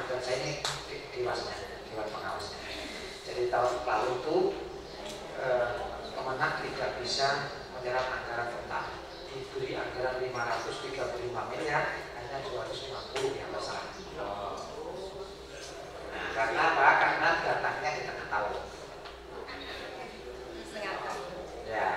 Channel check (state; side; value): identical; both; correlation 1.00